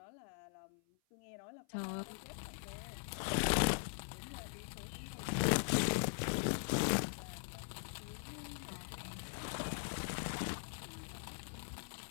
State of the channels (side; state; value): right; silent; 50 dB below the other